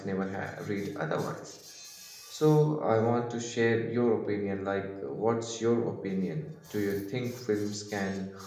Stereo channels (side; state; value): both; identical; correlation 1.00